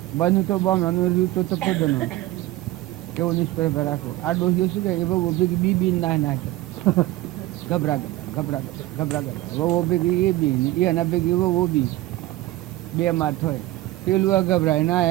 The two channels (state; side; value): quieter; left; 16.8 dB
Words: બન્યું તો બોમણાનું રહ્યું તો તપોદનો કેવો નિષ્પર્ધ રાખો. આ ડોહીઓ શું કહે એ બહુ ભેગી બી ના નાખે, ગભરા વહુ ભેગી એ બી એના ભેગી વહુ બી બે માથ હોય. પેલું ગભરાય ના